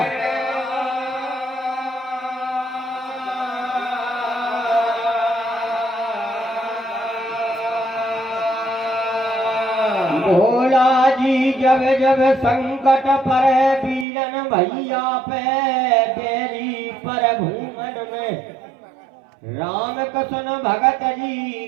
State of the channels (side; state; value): left; drops out; at 14.1 s